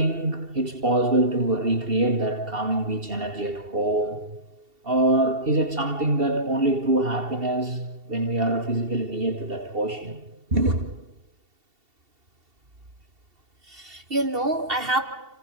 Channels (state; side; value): late; left; 2.7 ms